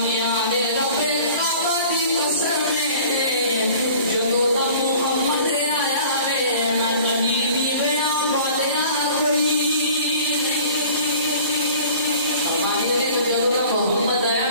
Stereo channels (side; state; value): both; inverted; correlation -0.47